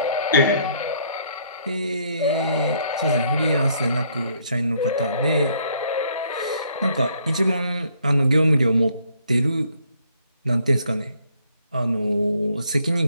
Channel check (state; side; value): inverted; both; correlation -0.67